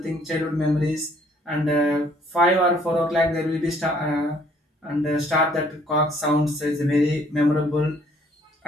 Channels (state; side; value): normal; both; correlation 0.62